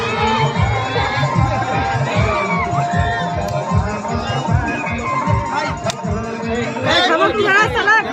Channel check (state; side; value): identical; both; correlation 1.00